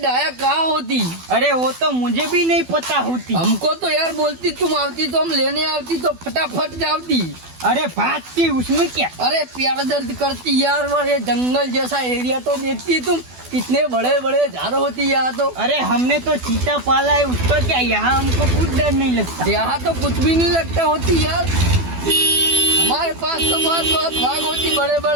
कहाँ होती? अरे वो तो मुझे भी नहीं पता होती। हमको तो यार बोलती, तुम आती तो हम लेने आती तो फटाफट जाती। अरे भागती, उसमें क्या। अरे प्यार दर्द करती यार। वो ये जंगल जैसा एरिया तो देखती तुम, कितने बड़े बड़े झाड़ होती यहाँ तो। अरे हमने तो चीता पाला है, उसका क्या, यहाँ हमको कुछ डर नहीं लगता। यहाँ तो कुछ भी नहीं लगता होती यार। हमारे पास तो बहुत बहुत भाग होती बड़े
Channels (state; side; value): late; left; 12 ms